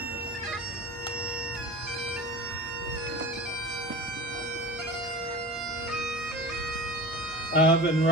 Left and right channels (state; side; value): normal; both; correlation 0.34